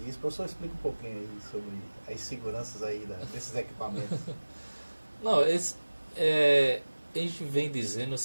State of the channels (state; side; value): inverted; both; correlation -1.00